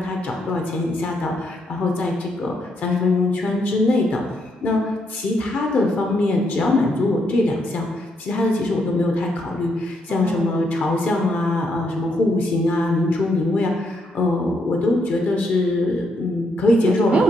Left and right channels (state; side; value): normal; both; correlation 0.76